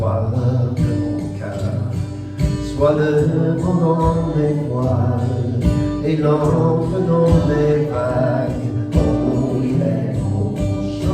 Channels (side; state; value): both; identical; correlation 1.00